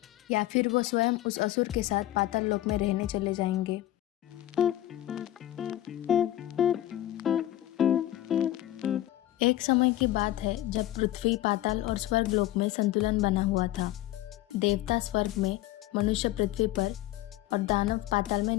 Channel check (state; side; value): quieter; right; 14.3 dB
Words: या फिर वो स्वयं उस असुर के साथ पाताल लोक में रहने चले जाएंगे? एक समय की बात है जब पृथ्वी, पाताल और स्वर्ग लोक में संतुलन बना हुआ था। देवता स्वर्ग में, मनुष्य पृथ्वी पर और दानव पाताल में